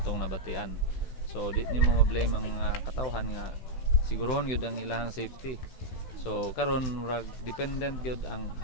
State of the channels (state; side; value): late; right; 16 ms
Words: nabatian. So di nimo ma-blame ang mga katawhan nga sigurohon gyud ang ilahang safety. So karon murag dependent gyud ang